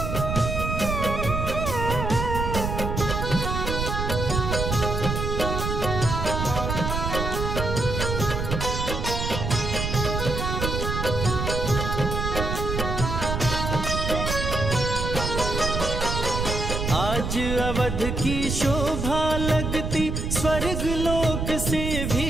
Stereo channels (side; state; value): right; noise; rumble, 2 dB below the sound